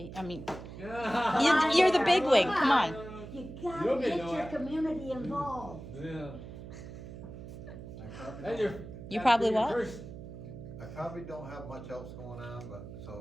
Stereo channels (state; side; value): noise; right; hum, 12 dB below the sound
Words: Yeah. you're the big wig. Come on. You gotta You'll get know your it. community involved. Yeah. I probably Then don't- You probably your what? first- I probably don't have much else going on, but